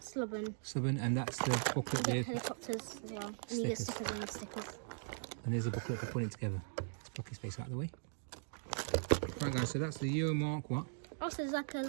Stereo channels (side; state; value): left; silent; digital silence